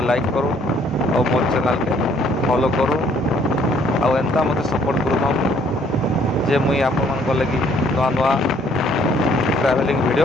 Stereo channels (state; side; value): normal; both; correlation 0.63